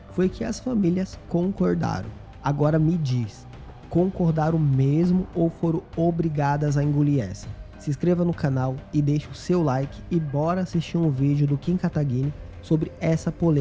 foi que as famílias concordaram. Agora me diz, concordaram mesmo ou foram obrigadas a engolir essa? Se inscreva no canal e deixe o seu like e bora assistir um vídeo do Kim Kataguiri sobre essa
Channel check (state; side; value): identical; both; correlation 1.00